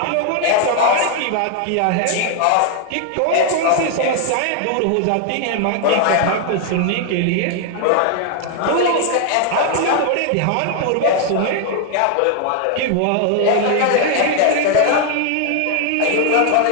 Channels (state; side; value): different; both; correlation 0.00